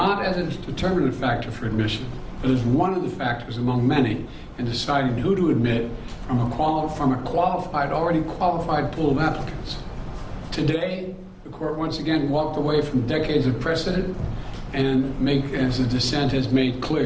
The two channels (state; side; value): identical; both; correlation 1.00